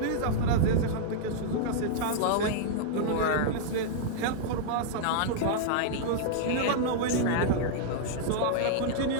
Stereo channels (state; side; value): different; both; correlation -0.01